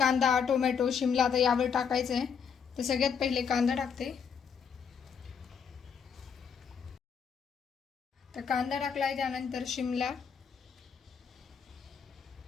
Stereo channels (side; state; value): right; quieter; 6.7 dB